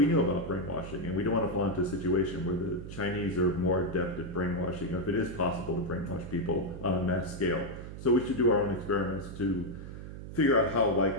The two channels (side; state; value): right; noise; hum, 11 dB below the sound